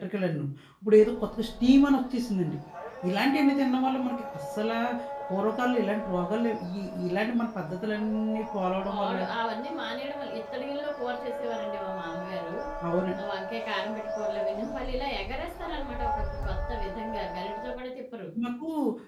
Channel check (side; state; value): both; identical; correlation 1.00